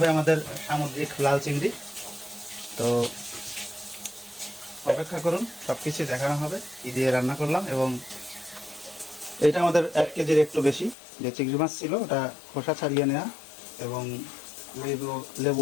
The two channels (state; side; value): drops out; right; at 11.0 s